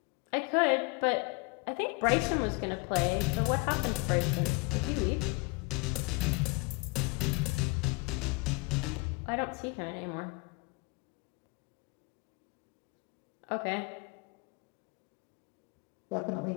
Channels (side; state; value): right; quieter; 27.1 dB